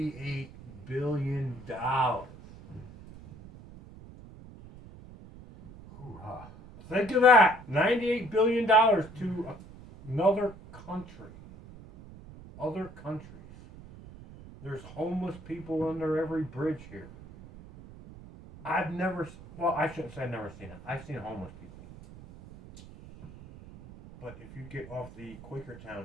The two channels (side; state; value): right; noise; rumble, 17 dB below the sound